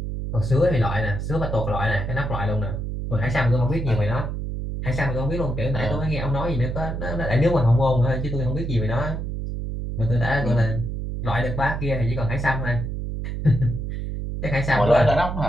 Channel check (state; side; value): noise; right; hum, 4 dB below the sound